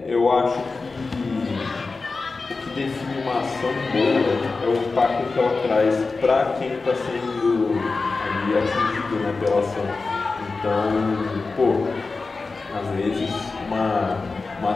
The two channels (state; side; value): quieter; right; 4.0 dB